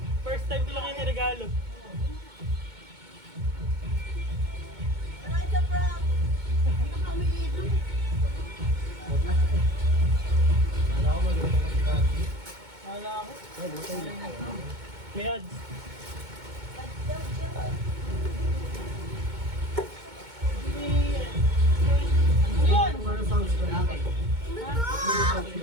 first time ko lang yung regalo. Wala ko mag-iwan ng sigati. Wala ako. Ay, butay na. May ads. Yun! Ano sounds ko na?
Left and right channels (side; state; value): left; late; 2.2 ms